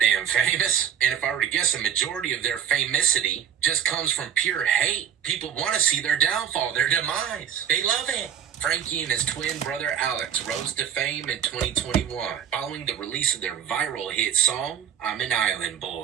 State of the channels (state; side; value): quieter; left; 8.9 dB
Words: damn famous. And if I were to guess, a majority of their famosity just comes from pure hate. People want to see their downfall, their demise. They love it. Frankie and his twin brother Alex rose to fame in 2021 following the release of their viral hit song, I'm an Island